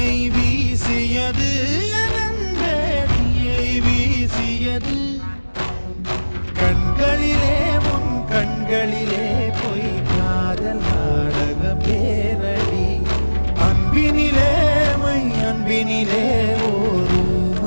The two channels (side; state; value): both; inverted; correlation -1.00